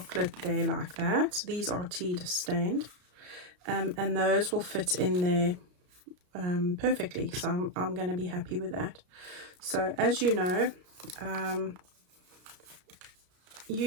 there like that. These are tea stained, and those will fit in there perfectly. So I'm going to be happy with that. So as you know,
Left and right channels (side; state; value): left; late; 33 ms